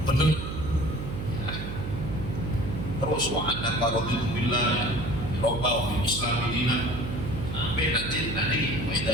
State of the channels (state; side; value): noise; right; hum, 6 dB below the sound